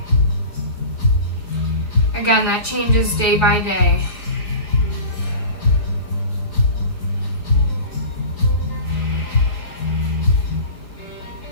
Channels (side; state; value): right; late; 4.8 ms